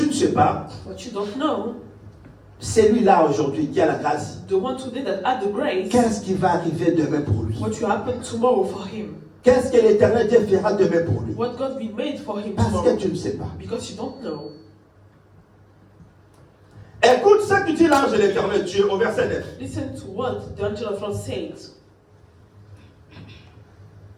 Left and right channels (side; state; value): both; identical; correlation 1.00